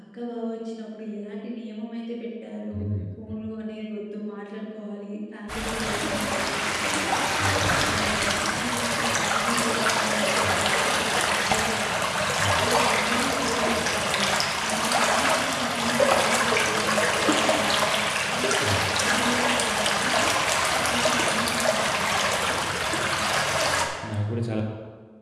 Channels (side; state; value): both; identical; correlation 1.00